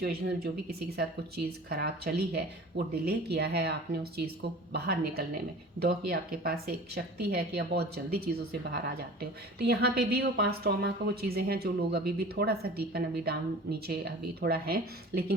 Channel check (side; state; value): both; normal; correlation 0.41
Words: में जो भी किसी के साथ कुछ चीज़ ख़राब चली है, वो डिले किया है आपने उस चीज़ को बाहर निकलने में, दो कि आपके पास एक शक्ति है कि आप बहुत जल्दी चीज़ों से बाहर आ जाते हो। तो यहाँ पे भी वो पास्ट ट्रॉमा का वो चीज़ें हैं जो लोग अभी भी थोड़ा सा डीपन, अभी डाउन नीचे अभी थोड़ा है,